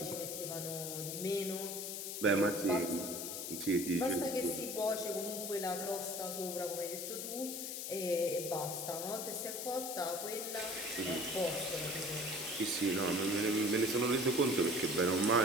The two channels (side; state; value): left; noise; hiss, 5 dB below the sound